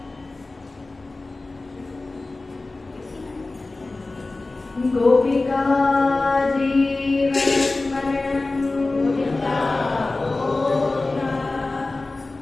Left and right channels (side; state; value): right; quieter; 3.2 dB